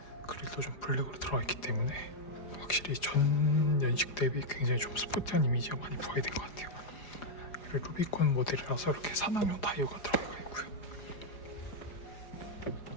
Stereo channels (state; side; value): late; right; 4.9 ms